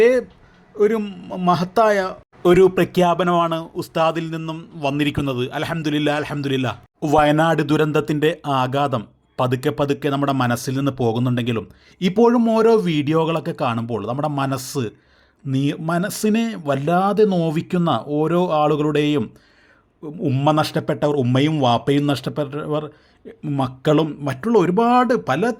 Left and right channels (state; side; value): identical; both; correlation 1.00